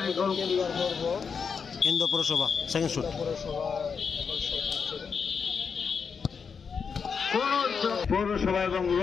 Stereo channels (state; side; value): quieter; right; 6.0 dB